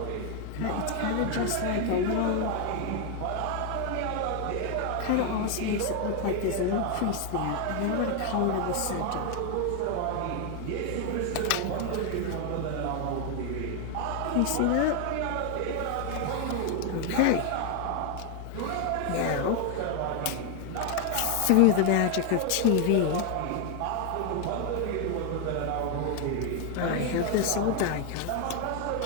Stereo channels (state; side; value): different; both; correlation 0.01